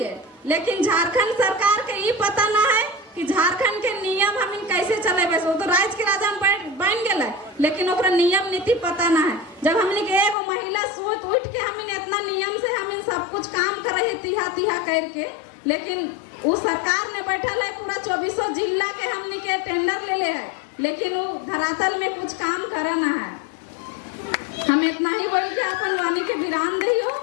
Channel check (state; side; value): drops out; right; at 10.4 s